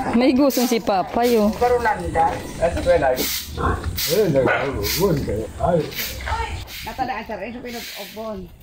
May gusto si Papay oh. Nag-ugon kayo. Ay. Natadaan sa rin sa pinag-obon.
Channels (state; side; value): identical; both; correlation 1.00